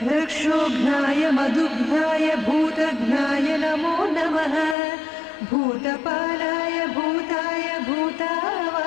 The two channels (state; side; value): drops out; right; at 4.8 s